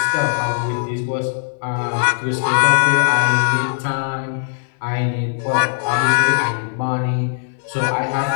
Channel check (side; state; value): right; silent; digital silence